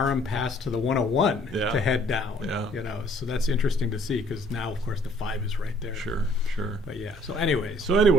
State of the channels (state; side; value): normal; both; correlation 0.60